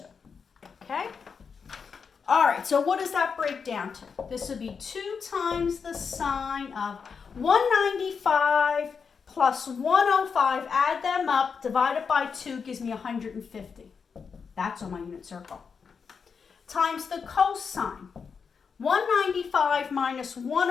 Okay? All right, so what does that break down to? This would be 2 times the sine of 195 plus 105, add them up, divide it by 2, gives me 150. That's on my unit circle. Times the cosine. 195 minus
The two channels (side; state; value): right; quieter; 5.9 dB